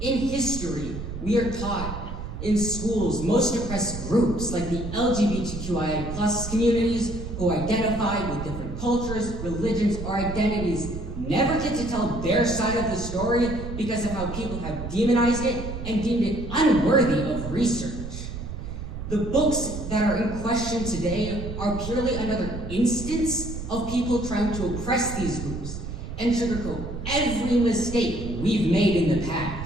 history, we are taught in schools most oppressed groups like the LGBTQIA plus communities who identify with different cultures, religions, or identities never get to tell their side of the story because of how people have demonized it and deemed it unworthy of research. The books that are in question today are purely another instance of people trying to oppress these groups and sugarcoat every mistake we've made in the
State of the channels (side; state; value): right; noise; rumble, 8 dB below the sound